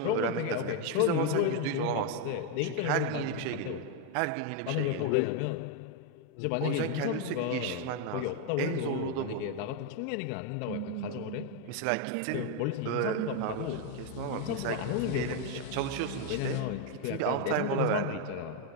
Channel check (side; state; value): both; different; correlation 0.02